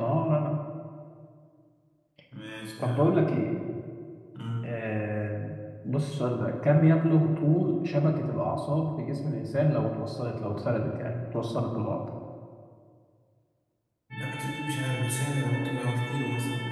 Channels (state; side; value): identical; both; correlation 1.00